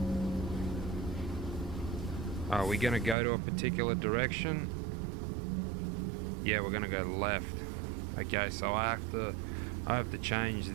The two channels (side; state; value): left; drops out; at 3.2 s